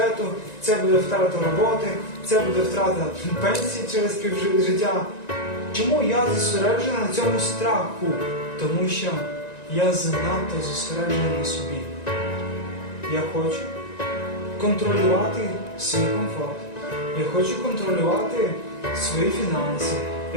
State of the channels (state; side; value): late; right; 1.9 ms